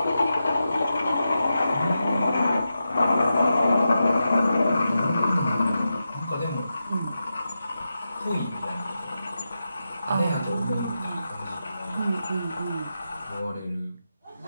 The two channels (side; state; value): both; inverted; correlation -0.89